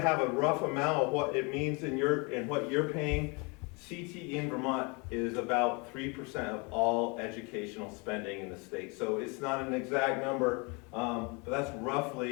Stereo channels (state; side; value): quieter; right; 30.0 dB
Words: a rough amount of what it means in what you're paying, CTE in Vermont is about 3% of all educational spending in the state. So it's not an exact number, but that's